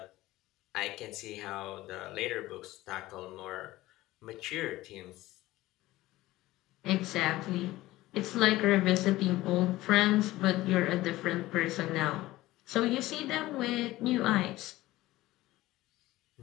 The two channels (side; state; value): right; quieter; 17.3 dB